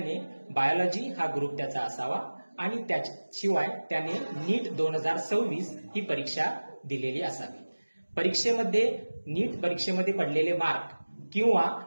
बायोलॉजी हा ग्रुप त्याचा असावा आणि त्याशिवाय त्याने नीट 2026 ही परीक्षा दिलेली असावी. नीट परीक्षेमध्ये पडलेले मार्क किंवा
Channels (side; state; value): both; inverted; correlation -1.00